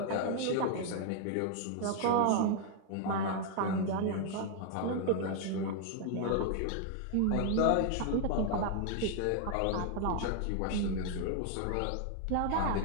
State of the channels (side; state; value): both; different; correlation 0.00